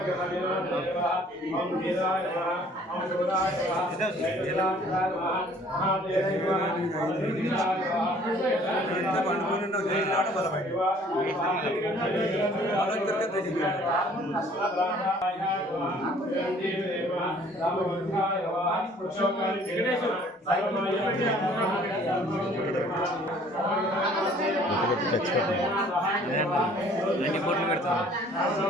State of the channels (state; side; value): normal; both; correlation 0.56